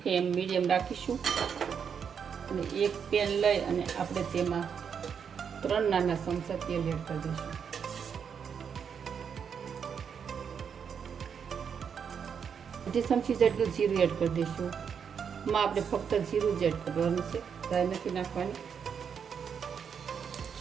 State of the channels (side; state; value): left; quieter; 7.1 dB